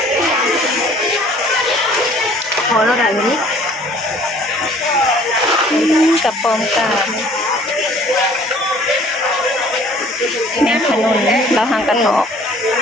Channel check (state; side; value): normal; both; correlation 0.54